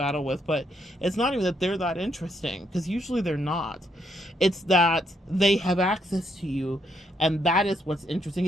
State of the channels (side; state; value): both; normal; correlation 0.75